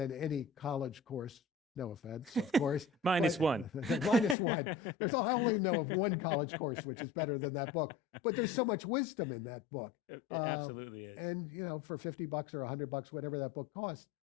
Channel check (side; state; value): right; drops out; at 4.4 s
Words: any college course. No offense, of course. Minus one. Minus one. I only know of one college course which is better than that book. But there's so much wisdom in that book. It absolutely is. And for $50 or $100, whatever that book costs,